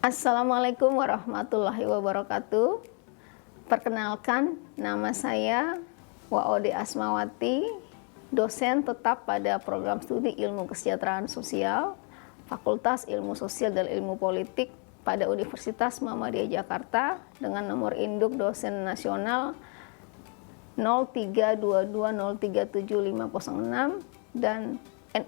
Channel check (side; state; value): right; quieter; 38.6 dB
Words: Assalamualaikum warahmatullahi wabarakatuh. Perkenalkan, nama saya Waode Asmawati, dosen tetap pada program studi Ilmu Kesejahteraan Sosial, Fakultas Ilmu Sosial dan Ilmu Politik pada Universitas Muhammadiyah Jakarta dengan nomor induk dosen nasional 0322037506 dan